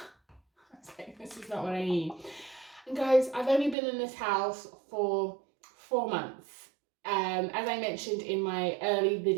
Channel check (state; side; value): drops out; left; at 3.8 s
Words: was like, this is not what I need. And guys, I've only been in this house for 4 months. As I mentioned in my early